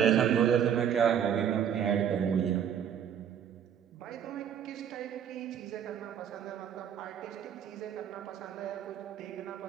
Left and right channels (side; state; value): left; quieter; 8.8 dB